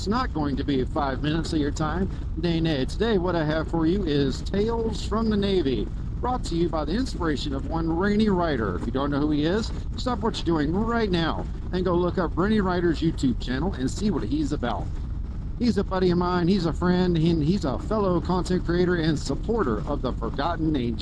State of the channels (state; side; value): identical; both; correlation 1.00